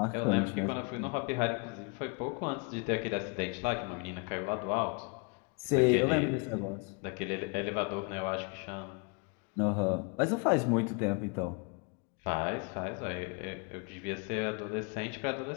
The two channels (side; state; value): right; quieter; 32.6 dB